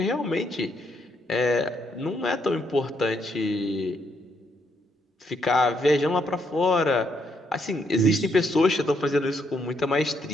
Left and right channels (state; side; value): normal; both; correlation 0.75